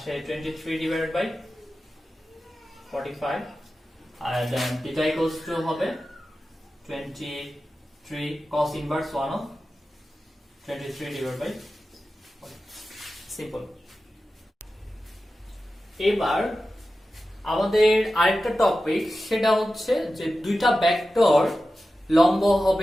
23 divided by 45 আর দেন থিটা ইকুয়ালস টু হবে 23 cos inverse 1 of 23 divided by 40। Simple. এবার আমাদের আরেকটা টপিক, সেটা হচ্ছে যে দুইটা ভেক্টর লম্ব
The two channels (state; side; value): normal; both; correlation 0.93